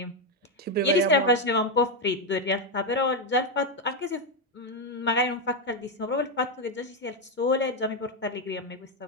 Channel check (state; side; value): normal; both; correlation 0.05